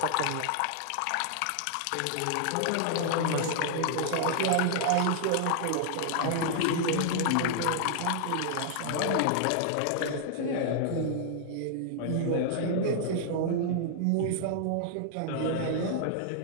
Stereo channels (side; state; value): both; different; correlation -0.01